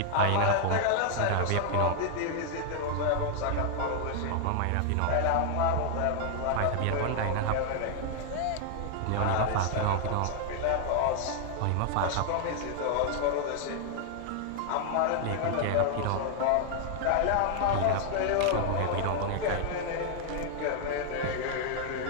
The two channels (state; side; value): different; both; correlation 0.00